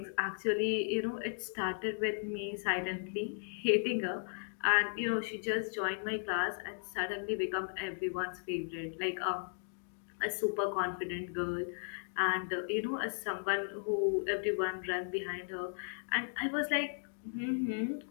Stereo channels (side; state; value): right; silent; digital silence